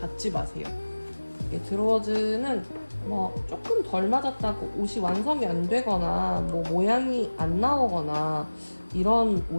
마세요. 드로워즈는 뭐 조금 덜 맞았다고 옷이 완성이 안 되거나 뭐 모양이 안 나오거나 이런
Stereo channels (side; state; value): both; inverted; correlation -1.00